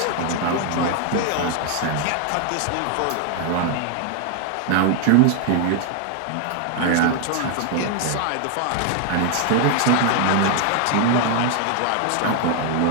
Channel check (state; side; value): different; both; correlation 0.00